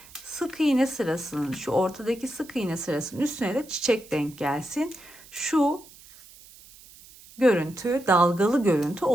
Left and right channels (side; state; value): right; noise; hiss, 22 dB below the sound